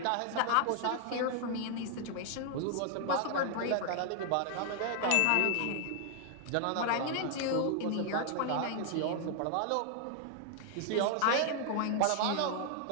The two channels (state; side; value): different; both; correlation 0.00